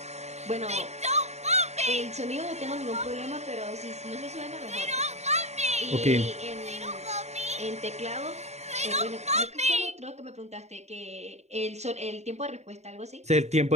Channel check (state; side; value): late; left; 0.32 ms